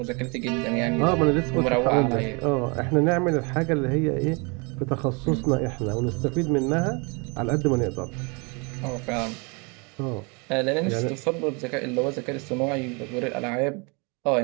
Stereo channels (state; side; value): quieter; left; 31.5 dB